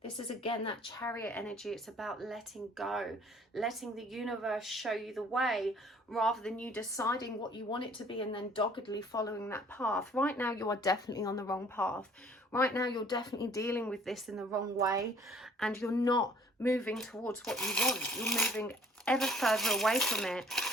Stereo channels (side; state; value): both; normal; correlation 0.55